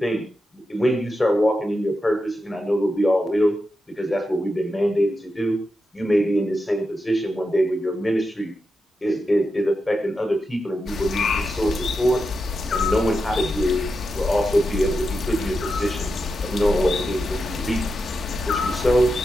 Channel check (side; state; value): both; normal; correlation 0.88